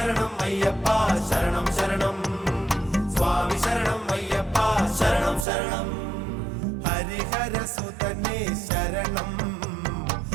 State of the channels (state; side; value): drops out; left; at 5.5 s